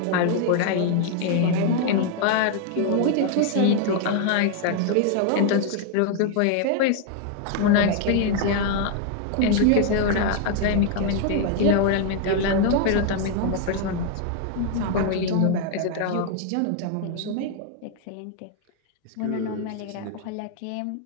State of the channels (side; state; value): both; different; correlation 0.00